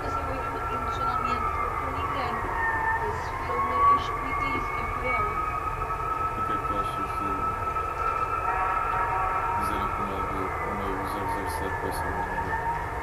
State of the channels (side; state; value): both; identical; correlation 1.00